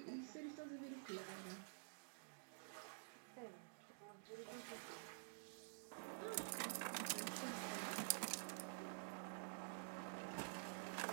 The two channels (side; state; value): left; silent; digital silence